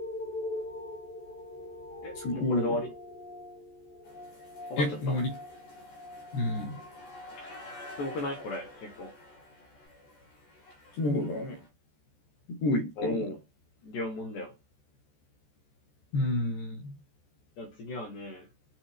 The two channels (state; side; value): late; right; 14 ms